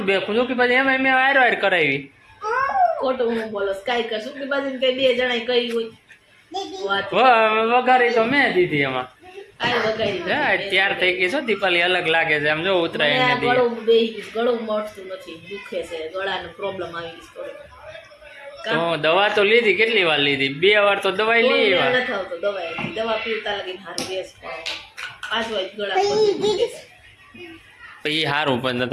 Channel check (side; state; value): both; identical; correlation 1.00